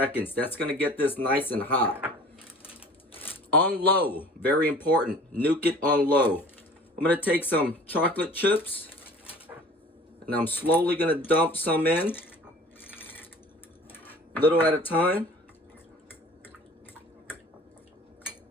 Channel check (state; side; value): normal; both; correlation 0.46